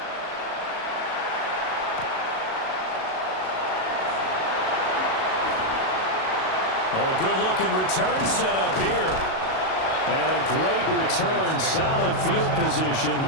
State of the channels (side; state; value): right; late; 37 ms